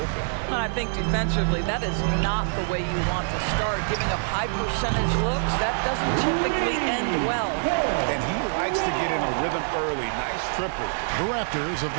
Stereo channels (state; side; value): silent; left; digital silence